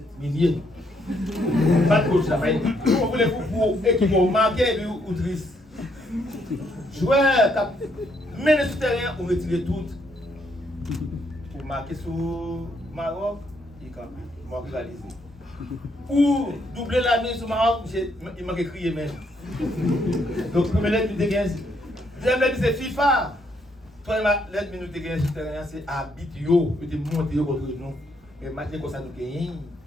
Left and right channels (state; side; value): normal; both; correlation 0.73